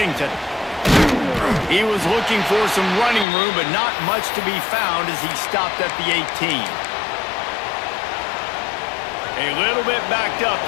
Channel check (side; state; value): right; drops out; at 3.2 s